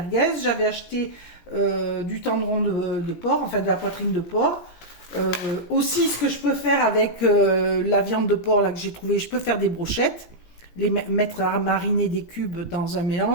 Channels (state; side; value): late; right; 17 ms